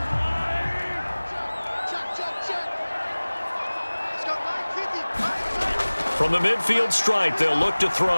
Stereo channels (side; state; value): both; inverted; correlation -1.00